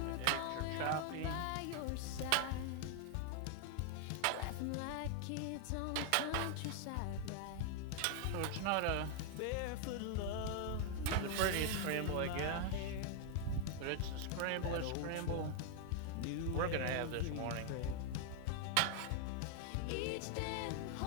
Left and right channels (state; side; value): different; both; correlation 0.00